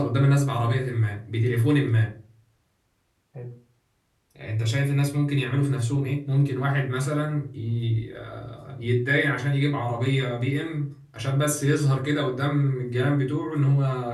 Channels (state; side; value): identical; both; correlation 1.00